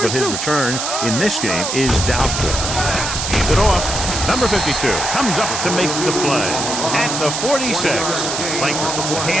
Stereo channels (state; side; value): noise; right; hiss, 3 dB below the sound